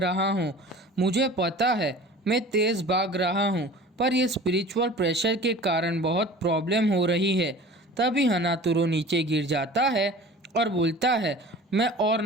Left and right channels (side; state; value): both; normal; correlation 0.41